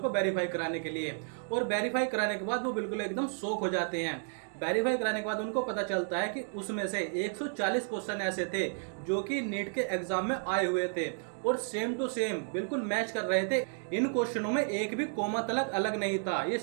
को वेरीफाई कराने के लिए। और वेरीफाई कराने के बाद वो बिल्कुल एकदम शॉक हो जाते हैं। वेरीफाई कराने के बाद उनको पता चलता है कि उसमें से 140 क्वेश्चन ऐसे थे जो कि नीट के एग्जाम में आए हुए थे और सेम टू सेम बिल्कुल मैच कर रहे थे। इन क्वेश्चनों में एक भी कोमा तलक अलग नहीं था। ये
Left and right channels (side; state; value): left; silent; 56 dB below the other